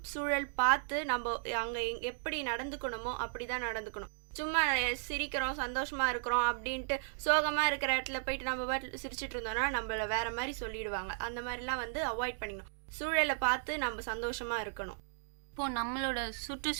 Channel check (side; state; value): left; silent; digital silence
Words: சூழல் பார்த்து நம்ம அங்கே எப்படி நடந்துக்கணுமோ அப்படி தான் நடந்துக்கணும். சும்மா சிரிக்கிறோம் சந்தோஷமாக இருக்கிறோம் அப்படின்ட்டு சோகமாக இருக்கிற இடத்துல போயிட்டு நம்ம பாட்டு சிரிச்சிட்டு இருந்தோம்னா நம்மள வேற மாதிரி சொல்லிடுவாங்க. அந்த மாதிரிலாம் வந்து அவாய்ட் பண்ணிக்கணும். சூழலை பார்த்து நம்ம சந்தோஷமா இருக்கணும். இப்போ நம்மளோட